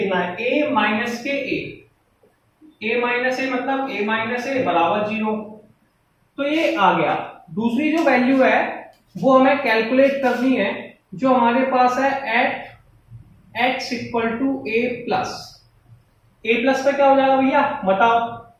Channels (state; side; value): identical; both; correlation 1.00